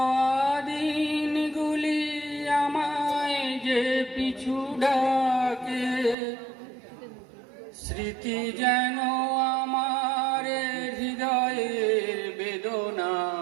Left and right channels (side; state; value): left; drops out; at 6.2 s